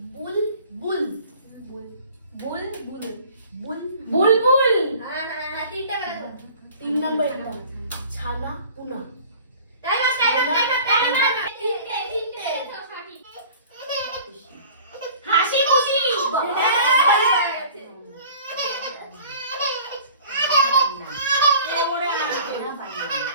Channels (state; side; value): inverted; both; correlation -0.47